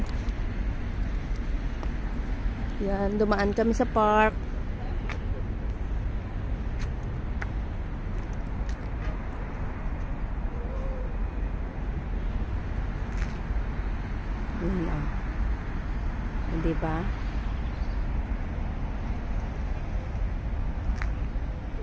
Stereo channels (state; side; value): identical; both; correlation 1.00